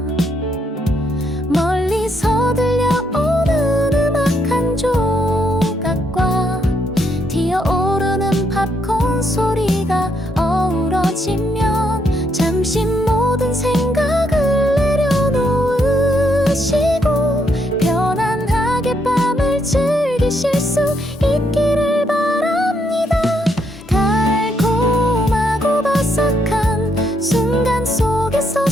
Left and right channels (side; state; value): both; normal; correlation 0.75